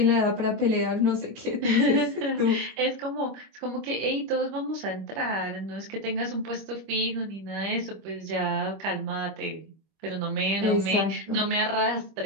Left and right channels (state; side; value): late; left; 25 ms